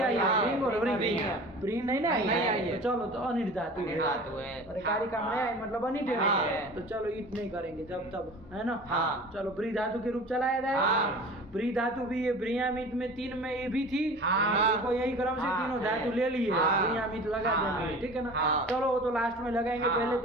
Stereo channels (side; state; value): both; normal; correlation 0.39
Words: आई है, रिंग और व्रिंग। ब्री नहीं ना आई, तो चलो तो अनिठ धातु है, और कारिका में आई मतलब अनिठ है, तो चलो ईट नहीं करेंगे जब तब, है ना। चलो ब्री धातु के रूप चलाया जाए। ब्री धातु भी ये ब्रियामित में 3 में ये भी थी, तो यही क्रम से तीनों धातु ले लिए, ब्रियामित लगा देना, ठीक है ना। चलो वो तो लास्ट में लगाएंगे, पहले